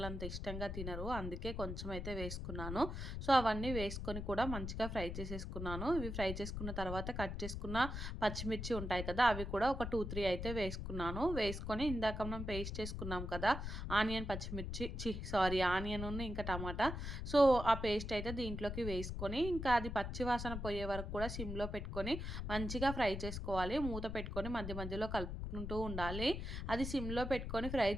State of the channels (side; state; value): left; noise; rumble, 5 dB below the sound